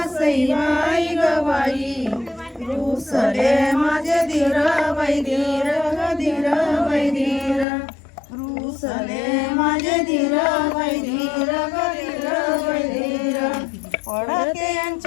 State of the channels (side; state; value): right; drops out; at 7.7 s